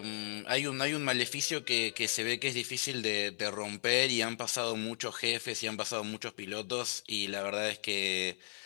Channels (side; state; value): right; silent; 54 dB below the other